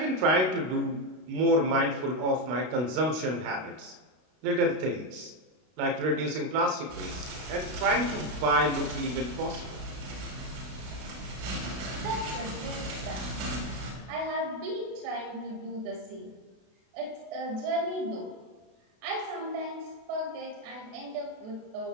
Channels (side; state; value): left; late; 32 ms